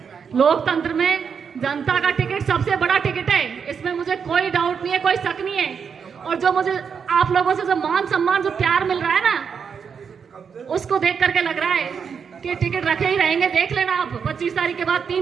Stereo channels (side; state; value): left; quieter; 6.6 dB